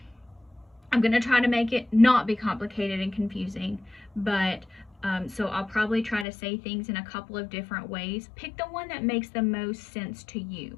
I'm going to try to make it not be complicated and confusing, but so I'll probably try to say things in a couple of different ways. Pick the one that makes the most sense to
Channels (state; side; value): drops out; right; at 6.2 s